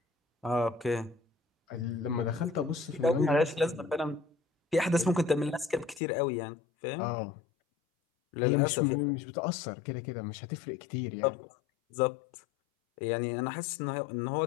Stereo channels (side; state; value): right; drops out; at 6.0 s